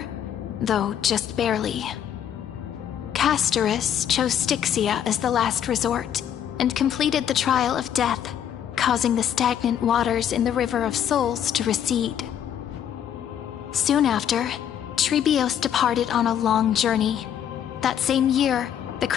though just barely. Castorus chose Styxia as the last resort, and completed the trial of death, causing the stagnant waters in the River of Souls to recede. Soon after, Trebios departed on a long journey. That same year, the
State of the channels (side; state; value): right; quieter; 9.6 dB